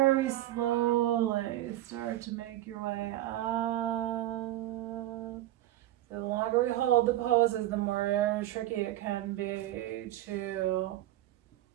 slowly start to make your way up. So the longer we hold the poses, the more tricky it can be to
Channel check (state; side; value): quieter; left; 14.6 dB